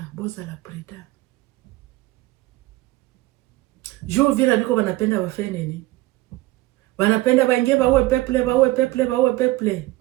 boza la preda. Juu Uvira niko wanapenda wafanye nini? Wanapenda baingie baue peple.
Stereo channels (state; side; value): quieter; left; 18.4 dB